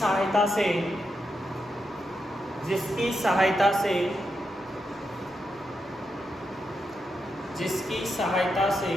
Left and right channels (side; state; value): both; normal; correlation 0.85